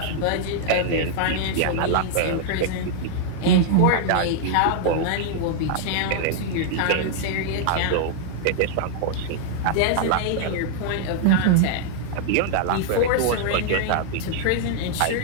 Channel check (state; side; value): different; both; correlation -0.01